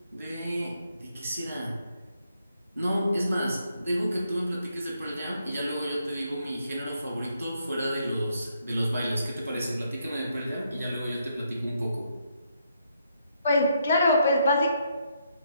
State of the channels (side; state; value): both; inverted; correlation -0.76